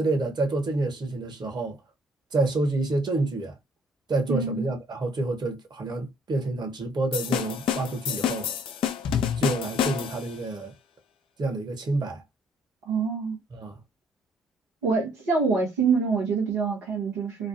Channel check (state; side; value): normal; both; correlation 0.62